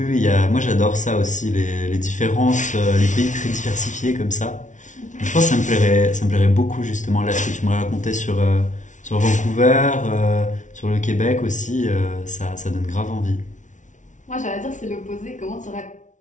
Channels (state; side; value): late; right; 0.37 ms